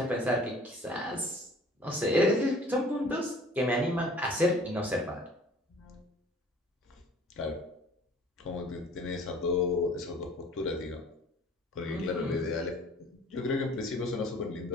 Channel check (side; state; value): both; normal; correlation 0.50